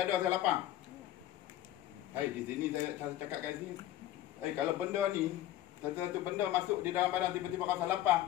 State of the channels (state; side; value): quieter; right; 13.6 dB